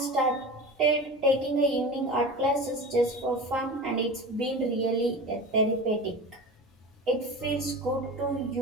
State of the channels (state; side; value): normal; both; correlation 0.31